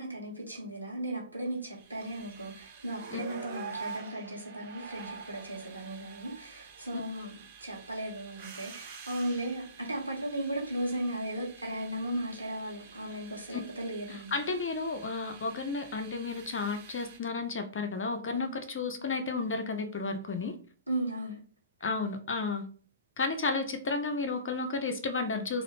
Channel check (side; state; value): both; inverted; correlation -0.43